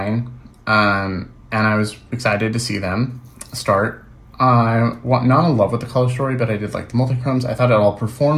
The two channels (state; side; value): identical; both; correlation 1.00